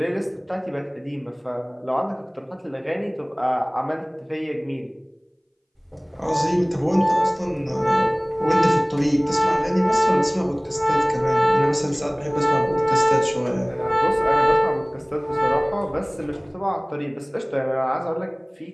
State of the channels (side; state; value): both; identical; correlation 1.00